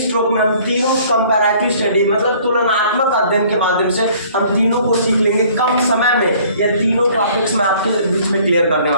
में हम तीनों comparative study मतलब तुलनात्मक अध्ययन के माध्यम से हम तीनों को सीख लेंगे कम समय में। यह तीनों टॉपिक्स मैं आपके बीच में क्लियर करने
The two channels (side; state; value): both; inverted; correlation -0.55